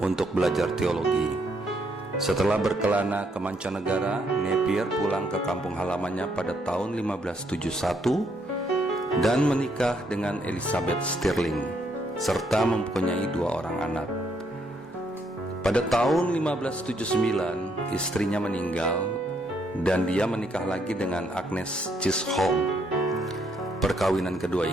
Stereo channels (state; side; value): normal; both; correlation 0.73